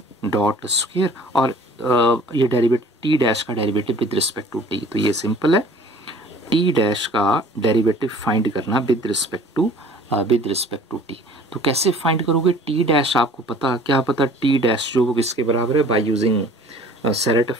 dot square, और ये डेरिवेटिव टी डैश का derivative with respect to T, तो ये सिंपल है, टी डैश का डेरिवेटिव फाइंड करना विद रिस्पेक्ट टू टी। तो कैसे फाइंड करोगे, टी डैश आपको पता, क्या पता, टी डैश जो किसके बराबर है, by using Serret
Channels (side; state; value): both; normal; correlation 0.49